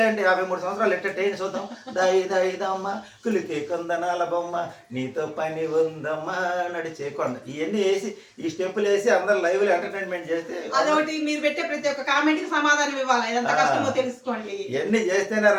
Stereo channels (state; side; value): identical; both; correlation 1.00